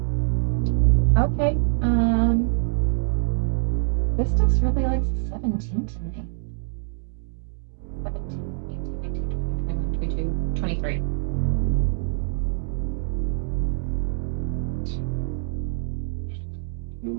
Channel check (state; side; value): silent; left; digital silence